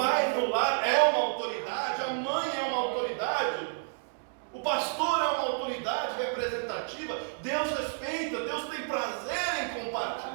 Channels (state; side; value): silent; left; digital silence